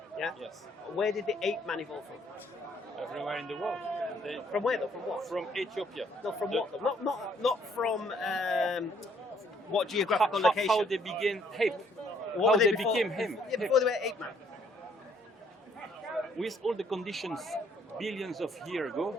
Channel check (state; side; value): normal; both; correlation 0.65